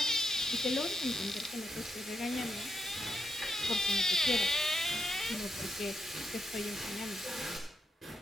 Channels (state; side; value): normal; both; correlation 0.82